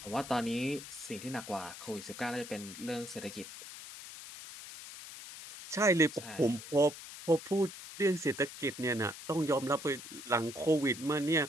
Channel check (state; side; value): noise; left; hiss, 13 dB below the sound